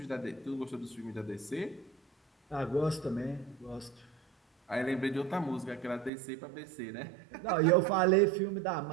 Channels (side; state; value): left; drops out; at 6.1 s